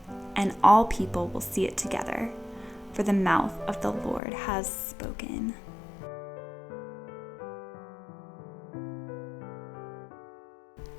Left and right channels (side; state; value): right; drops out; at 4.2 s